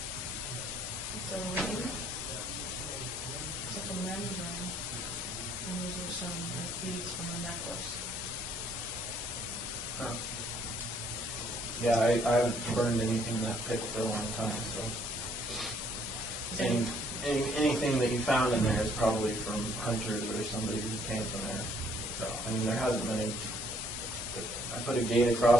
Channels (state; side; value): normal; both; correlation 0.64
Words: It's a ring. It's like a men's ring. And these are some beads from a necklace. Huh. Yeah, I haven't burned anything in that pit for a long time, so. Anything that you found in there is probably from hunters or somebody who came from there. So, I mean, there hasn't been any. I put a gate